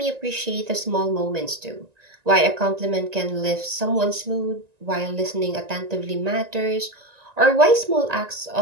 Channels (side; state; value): left; late; 1.9 ms